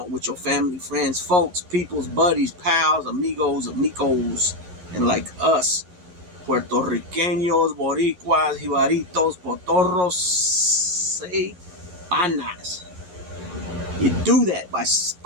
with your family, friends, folks, peoples, buddies, pals, amigos, and like us. Puertorriqueños, boricuas, jibaritos, potorros, panas. You do that by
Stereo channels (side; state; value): left; late; 11 ms